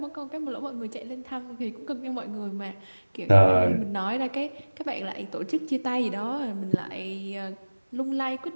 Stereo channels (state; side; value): inverted; both; correlation -1.00